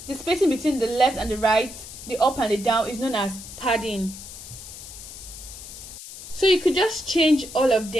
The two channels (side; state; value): left; noise; hiss, 13 dB below the sound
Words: left and the right, the up and the down, is known as padding. So you could just change all of